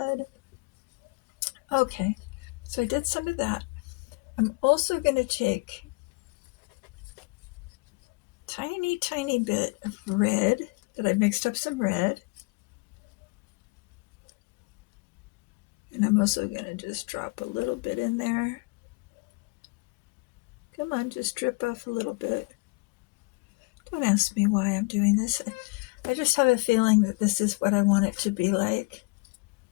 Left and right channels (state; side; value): quieter; right; 28.3 dB